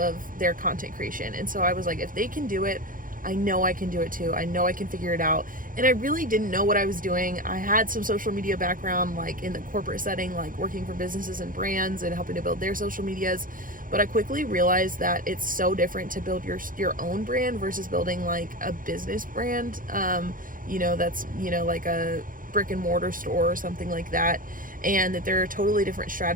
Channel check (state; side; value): late; left; 0.40 ms